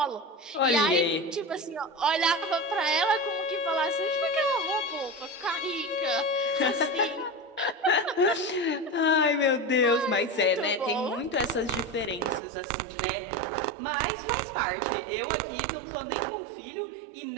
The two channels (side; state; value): left; drops out; at 12.4 s